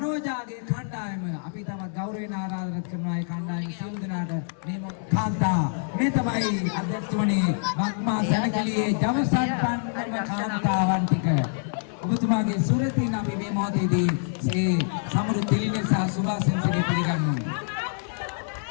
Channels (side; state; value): right; silent; digital silence